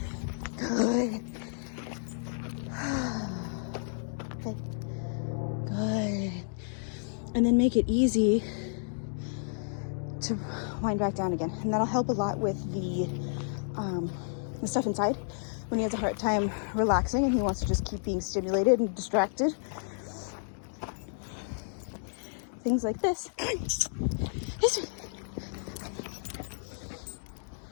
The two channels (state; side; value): silent; right; digital silence